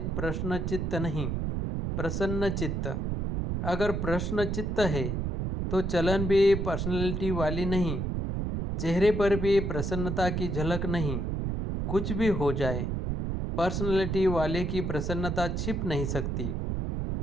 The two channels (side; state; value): right; noise; rumble, 1 dB below the sound